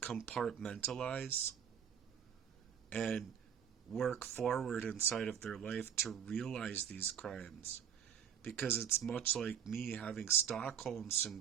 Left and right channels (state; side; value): quieter; left; 8.4 dB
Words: and work forward inside of their life to realize these crimes. Because it's much like me having Stockholm